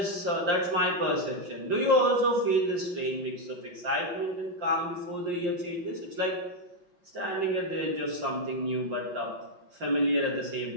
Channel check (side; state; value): left; late; 5.7 ms